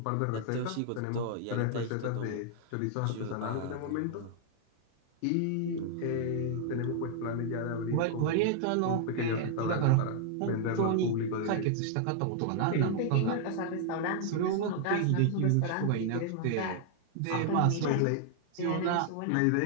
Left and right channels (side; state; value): both; different; correlation 0.00